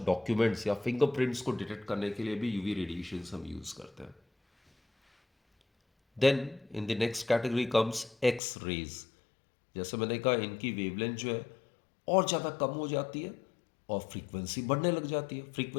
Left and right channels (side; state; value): right; drops out; at 8.4 s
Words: डॉक्यूमेंट्स या फिंगरप्रिंट्स को डिटेक्ट करने के लिए भी यूवी रेडिएशंस हम यूज़ करते हैं। Then in the next category comes X rays. जैसे मैंने कहा इनकी वेवलेंथ जो है और ज़्यादा कम हो जाती है और फ्रीक्वेंसी बढ़ने लग जाती है।